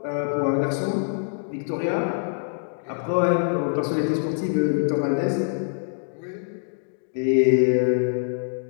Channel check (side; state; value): right; silent; digital silence